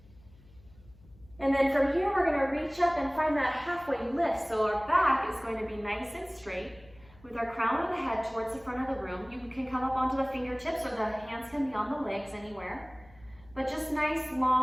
And then from here, we're going to reach up and find that halfway lift. So our back is going to be nice and straight with our crown of the head towards the front of the room. You can come up onto the fingertips or the hands can be on the legs anywhere. But just nice,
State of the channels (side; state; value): left; noise; hum, 25 dB below the sound